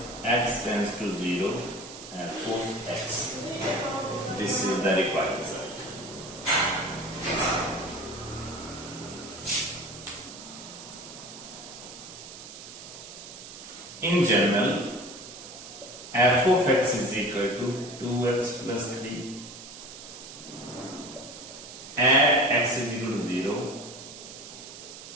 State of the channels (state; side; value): noise; right; hiss, 14 dB below the sound